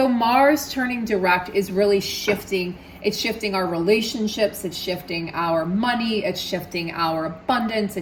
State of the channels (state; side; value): identical; both; correlation 1.00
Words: Mars turning direct is really shifting. It's shifting our relationships. It's shifting our money. It's shifting our abundance.